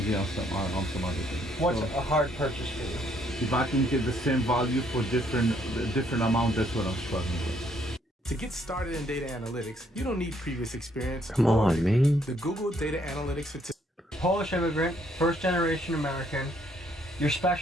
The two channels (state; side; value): normal; both; correlation 0.69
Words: on some other things. What's So, a hard purchase for you? if I can get the same value for different amount, that's what I'm struggling with. To get started in data analytics, you don't need previous experience. Come on, man. The Google Data Analytics Certificate. Polish immigrant, first generation American. Your